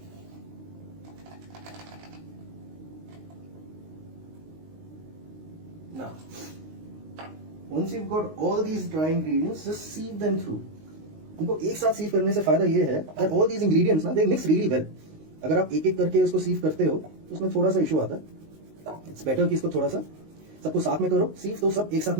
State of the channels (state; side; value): late; left; 19 ms